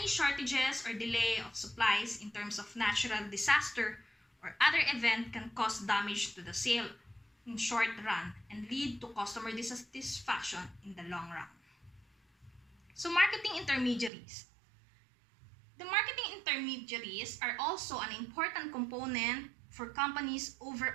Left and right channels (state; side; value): drops out; left; at 14.1 s